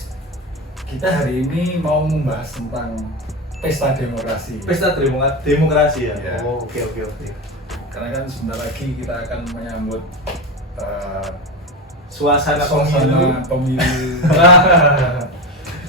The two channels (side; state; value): both; normal; correlation 0.18